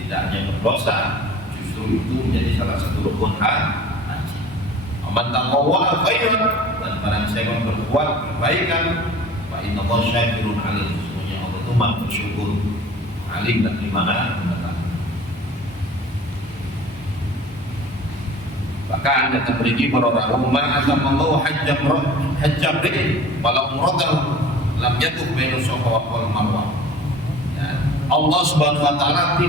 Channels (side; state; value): both; normal; correlation 0.44